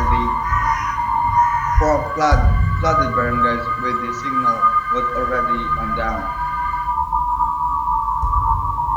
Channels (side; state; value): both; identical; correlation 1.00